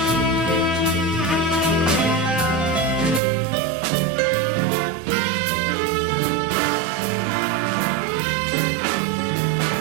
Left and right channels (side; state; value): left; drops out; at 3.2 s